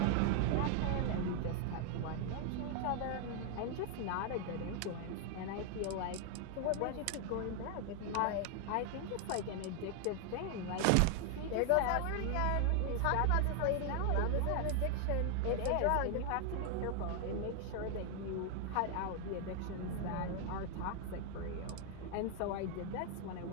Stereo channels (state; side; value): different; both; correlation 0.00